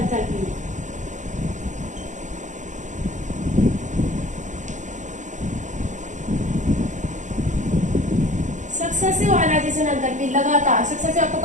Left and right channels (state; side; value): late; left; 0.35 ms